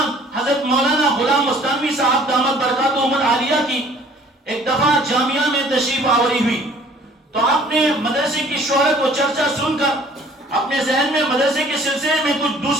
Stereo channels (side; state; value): both; normal; correlation 0.54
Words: حضرت مولانا غلام مستانوی صاحب دامت برکاتہم العالیہ کی ایک دفعہ جامعہ میں تشریف آوری ہوئی، تو آپ نے مدرسے کی شہرت و چرچا سن کر اپنے ذہن میں مدرسے کے سلسلے میں کچھ